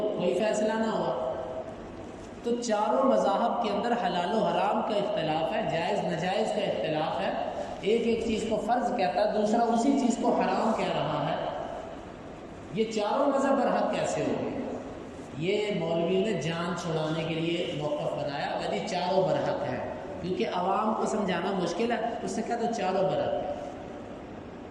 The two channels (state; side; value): identical; both; correlation 1.00